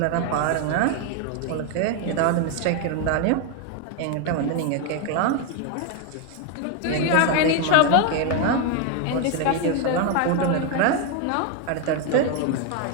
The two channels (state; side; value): different; both; correlation 0.01